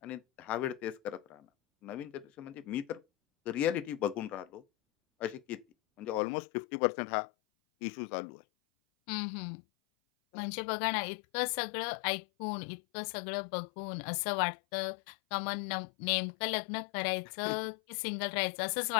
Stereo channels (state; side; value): drops out; right; at 6.2 s